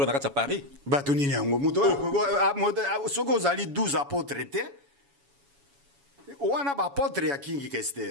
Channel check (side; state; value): left; late; 7.1 ms